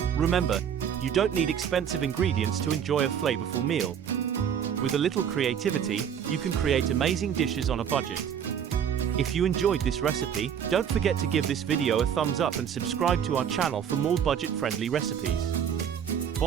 Remember, you don't need expensive ingredients to enjoy a flavorful meal. With a little creativity, you can create amazing dishes on a budget. If you enjoyed this recipe, don't forget to give this video a thumbs up and subscribe to our channel for more budget-friendly recipes.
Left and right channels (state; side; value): quieter; left; 8.4 dB